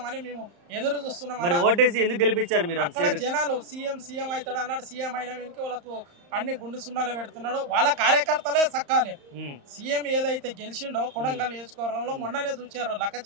మేము ఎదురు చూస్తున్నాం. మరి ఓటేసి ఎందుకు గెలిపించారు మీరు? అక్కడ జనాలు సీఎం అవుతాడు అన్నాడు. సీఎం అయిన వెనుక వాళ్ళకు అన్ని గుండు సున్నాలు పెడుతున్నాడు. వాళ్ళ కార్యకర్తలే సక్కాలి. సీఎం ఏదైతే గెలిచిండో కొడంగల్ నియోజకవర్గంలో మొన్ననే చూచారు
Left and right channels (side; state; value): left; late; 35 ms